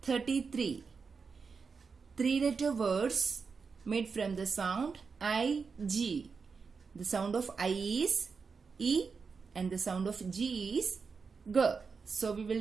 33. 3-letter words made from the sound I-G. The sound of I is E and the sound of G is G. So we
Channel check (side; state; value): left; quieter; 5.2 dB